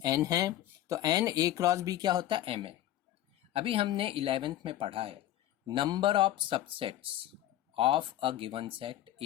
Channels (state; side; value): quieter; right; 13.3 dB